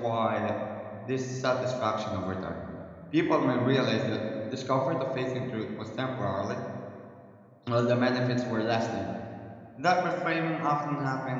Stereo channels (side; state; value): both; identical; correlation 1.00